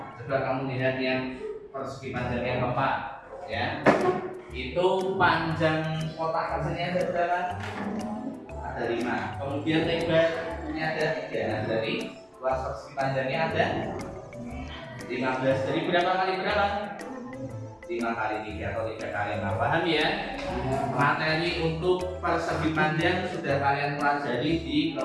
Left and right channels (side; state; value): both; identical; correlation 1.00